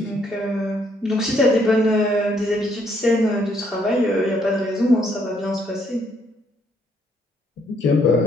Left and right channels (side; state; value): both; normal; correlation 0.70